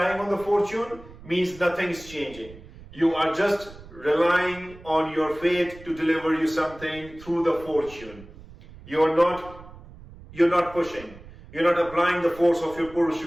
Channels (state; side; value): noise; right; rumble, 19 dB below the sound